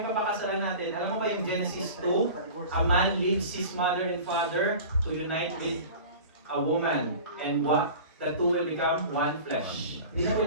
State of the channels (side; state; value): both; inverted; correlation -0.38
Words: papakasalan natin. Alam mo ba yung Genesis 2? A man leaves his mother and father to unite with a woman. And what? The two will become one flesh. Hindi na